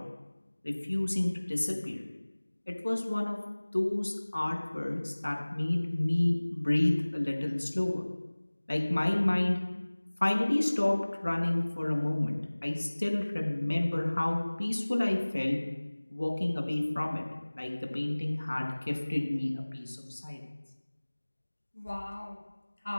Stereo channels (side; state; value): both; inverted; correlation -1.00